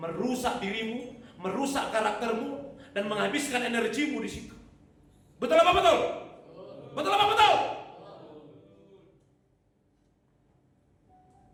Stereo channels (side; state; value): both; identical; correlation 1.00